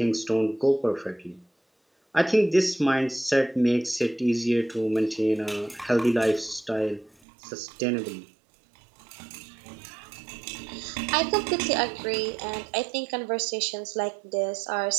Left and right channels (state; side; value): drops out; left; at 7.1 s